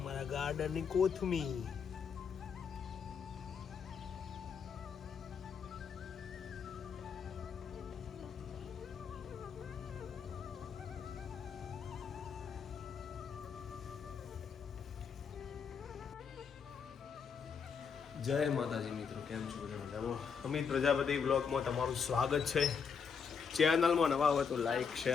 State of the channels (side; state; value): right; quieter; 6.3 dB